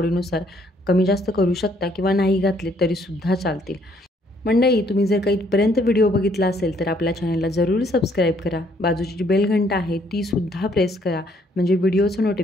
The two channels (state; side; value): normal; both; correlation 0.66